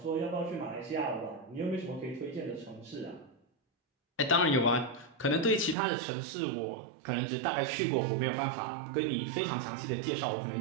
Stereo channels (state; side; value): drops out; left; at 5.8 s